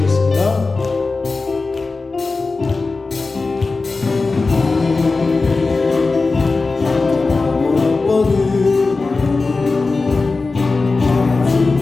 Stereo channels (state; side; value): quieter; right; 3.8 dB